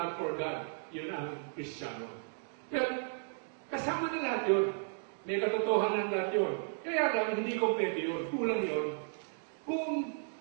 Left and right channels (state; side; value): silent; left; digital silence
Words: for God, yun ang Kristiyano. Pero, kasama na lahat yun. May katotohanan lahat yun. Kaya lang, hindi kompleto yun. Kulang yun. Kung